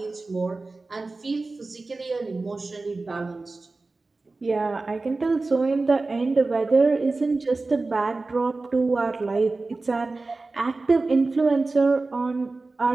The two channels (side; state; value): left; quieter; 3.5 dB